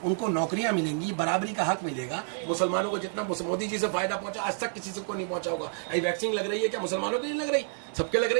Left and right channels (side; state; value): left; silent; 59 dB below the other